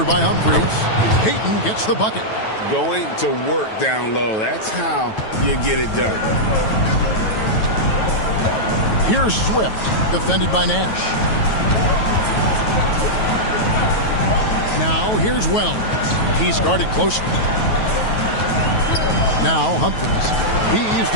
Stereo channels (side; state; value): right; late; 9.2 ms